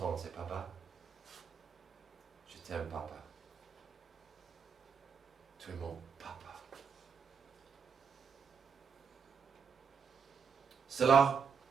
c'est papa. Je t'aime, papa. Tu es mon papa. Cela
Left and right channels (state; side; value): quieter; left; 6.3 dB